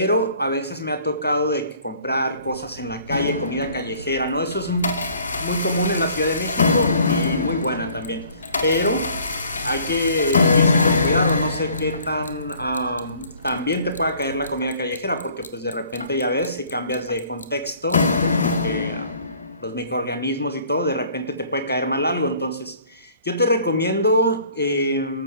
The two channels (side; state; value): both; inverted; correlation -0.55